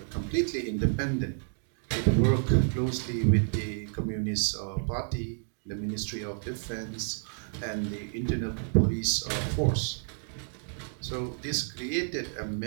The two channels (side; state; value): left; silent; digital silence